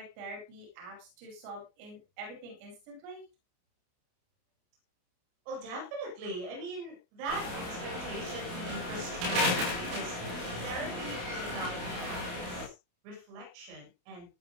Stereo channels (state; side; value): late; left; 28 ms